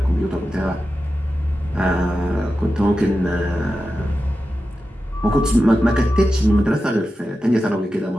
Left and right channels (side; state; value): both; normal; correlation 0.92